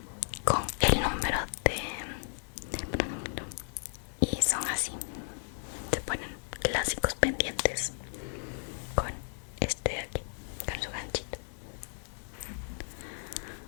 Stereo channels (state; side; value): silent; right; digital silence